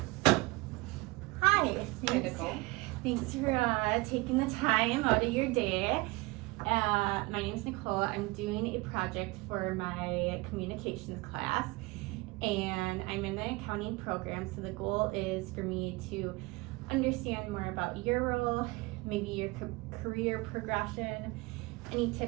Hi. Hi, Nicole. Thanks for taking the time out of your day. My name is Nicole. I'm doing a project for my communications class, and I'm in the accounting program. So the goal is for me to understand more about your role, maybe your career progression, any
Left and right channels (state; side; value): quieter; left; 24.0 dB